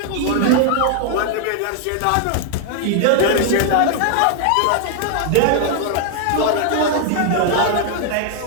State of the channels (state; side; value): different; both; correlation 0.00